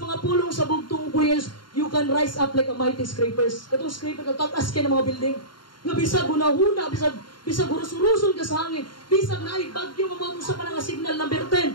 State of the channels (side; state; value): right; late; 0.72 ms